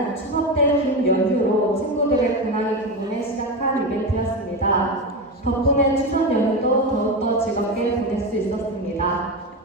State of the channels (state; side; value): normal; both; correlation 0.18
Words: 추석 때 긴 연휴로 친구들의 근황이 궁금해 시작한 이벤트였습니다. 덕분에 추석 연휴도 더욱더 즐겁게 보낼 수 있었습니다.